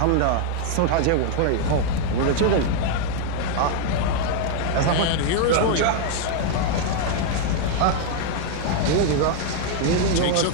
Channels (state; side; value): different; both; correlation 0.00